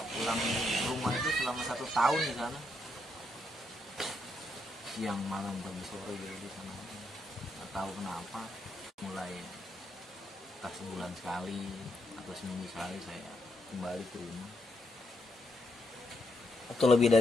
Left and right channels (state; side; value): normal; both; correlation 0.79